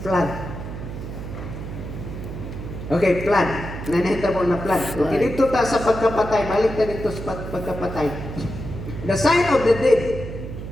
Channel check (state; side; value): noise; right; hum, 8 dB below the sound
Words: Okay, flood. Nanahita mo na flood. Flood. Okay, dito ta sa pagkapatay. Balik ta dito sa pagkapatay. The sign of the dead.